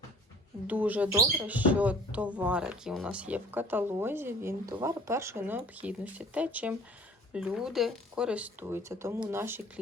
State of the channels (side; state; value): both; normal; correlation 0.49